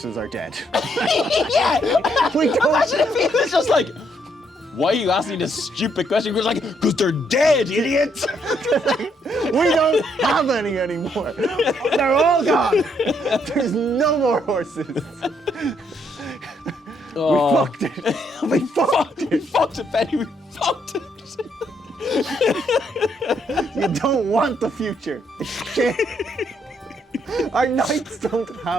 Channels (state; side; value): normal; both; correlation 0.73